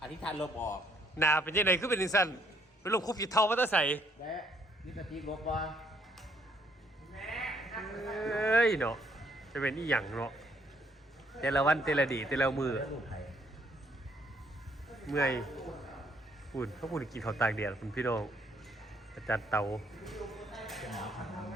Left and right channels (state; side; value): normal; both; correlation 0.67